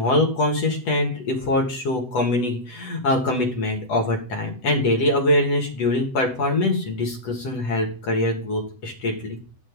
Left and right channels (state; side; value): late; right; 8.0 ms